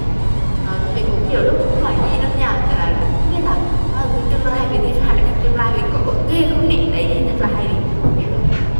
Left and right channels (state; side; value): inverted; both; correlation -1.00